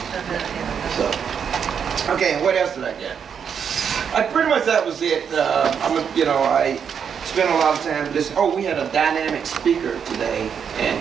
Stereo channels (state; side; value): quieter; left; 7.3 dB